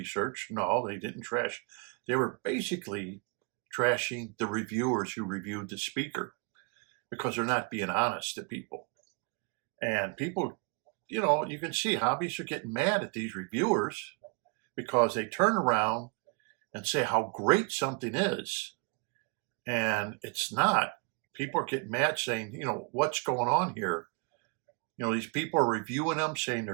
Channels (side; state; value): left; quieter; 33.6 dB